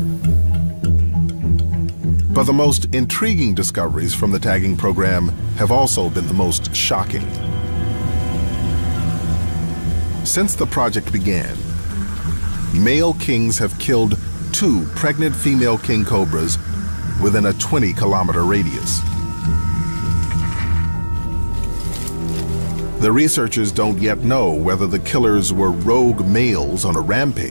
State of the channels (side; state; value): both; inverted; correlation -1.00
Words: But the most intriguing discoveries from the tagging program have also been the most shocking. Since the project began, male kings have killed 2 pregnant female king cobras within a 20-kilometer radius. The researchers don't yet know whether the killers were rogue males on a